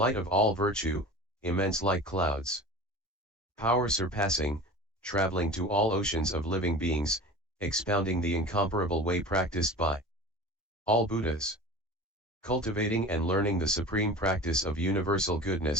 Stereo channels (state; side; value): normal; both; correlation 0.36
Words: of all virtue, immense like clouds. Power surpassing, traveling to all oceans of living beings, expounding the incomparable way practiced by all Buddhas. Cultivating and learning the supreme practice of universal